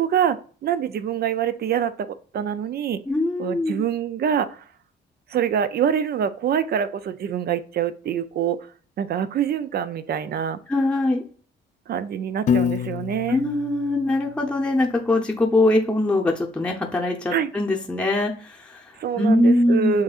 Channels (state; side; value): normal; both; correlation 0.54